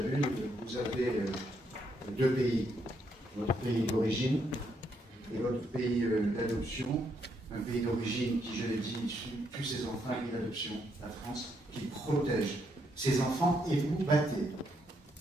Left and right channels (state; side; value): normal; both; correlation 0.75